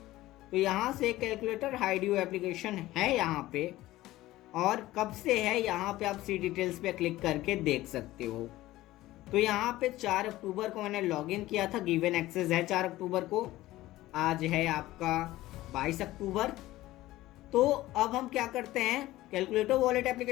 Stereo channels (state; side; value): quieter; right; 16.6 dB